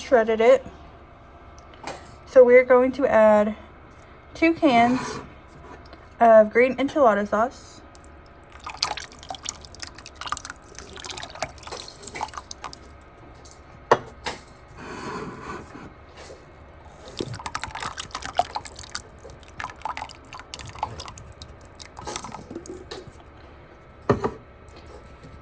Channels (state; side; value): identical; both; correlation 1.00